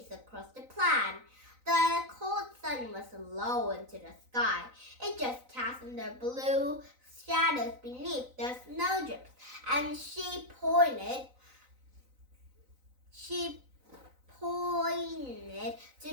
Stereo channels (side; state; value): left; late; 4.0 ms